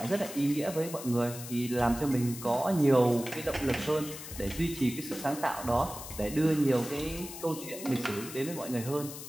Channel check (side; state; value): left; noise; hiss, 11 dB below the sound